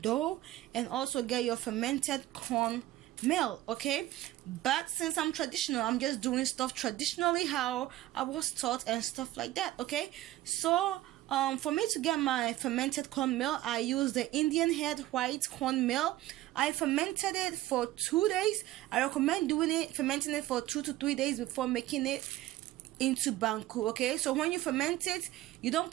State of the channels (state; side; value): quieter; left; 15.5 dB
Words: dough, and also get your fermented corn meal. Okay, but since I'm traditional, I'm just doing stuff traditionally how I was taught and stuff like that. Okay, so for me to get my fermented corn meal, I use the Indian head white corn meal. I fermented it for 2 days. I recommend fermenting it for 2 to 3 days before making it into banku. Okay, so when you ferment it, you don't